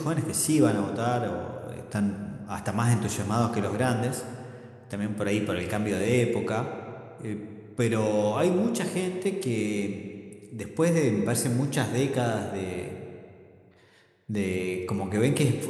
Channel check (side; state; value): both; identical; correlation 1.00